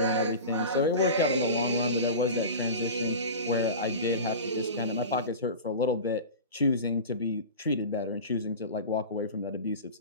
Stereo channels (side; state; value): both; inverted; correlation -0.31